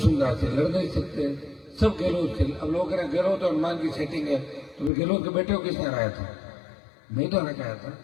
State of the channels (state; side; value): drops out; right; at 4.9 s